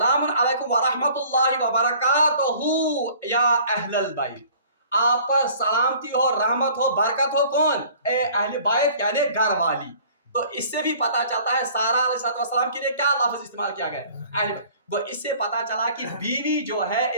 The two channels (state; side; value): inverted; both; correlation -0.52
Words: अलैकुम व रहमतुल्लाहि व बरकातुहू या अहलल बैत, आप पर सलामती हो, रहमत हो, बरकत हो। कौन? ए अहले बैत यानी घर वाली। तो इससे भी पता चलता है सारा अलैहिस्सलाम के लिए क्या लफ्ज इस्तेमाल किया गया? वो इससे पता चला कि बीवी जो है